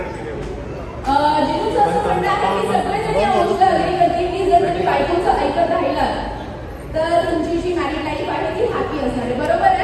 जिथून असं म्हणणं आहे की सगळेजण या गोष्टीला अग्री करतील की जर तुम्ही बायकोचं ऐकत राहिलात तर तुमची जी मॅरिड लाईफ आहे ती हॅपी असणार आहे. बरोबर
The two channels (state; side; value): identical; both; correlation 1.00